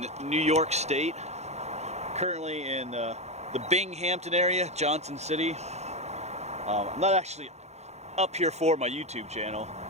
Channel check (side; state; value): left; late; 0.32 ms